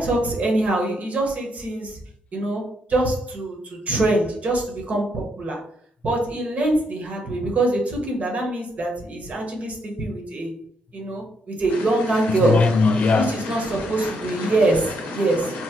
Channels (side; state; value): both; normal; correlation 0.75